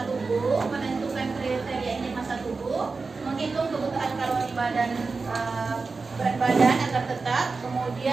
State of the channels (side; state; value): left; quieter; 4.2 dB